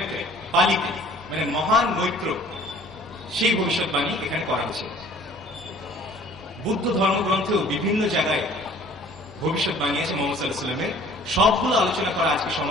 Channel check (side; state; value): both; normal; correlation 0.52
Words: পালিতে, মানে মহান মৈত্র, সেই ভবিষ্যৎবাণী এখানে করা হয়েছে। বুদ্ধ ধর্মগ্রন্থেও বিভিন্ন জায়গায় ভবিষ্যৎবাণী আছে মুহাম্মদ সাল্লাল্লাহু আলাইহি ওয়াসাল্লামের। সবগুলো আলোচনা করা আজকে